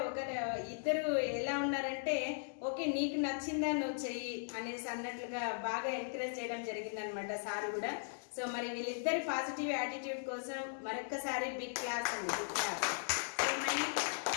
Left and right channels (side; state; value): right; silent; digital silence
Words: ఇద్దరు ఎలా ఉన్నారంటే ఓకే నీకు నచ్చిందా నువ్వు చెయ్యి అనేసి అన్నట్లుగా బాగా ఎంకరేజ్ చేయడం జరిగింది అనమాట సార్ కూడా. సో మరి వీళ్ళిద్దరి పాజిటివ్ యాటిట్యూడ్ కోసం మరొక్కసారి బిగ్ క్లాస్ అండి, బిగ్ క్లాస్. సో మరి